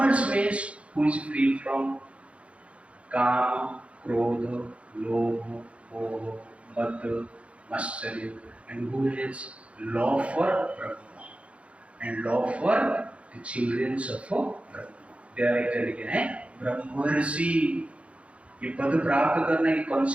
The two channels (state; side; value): late; left; 0.062 ms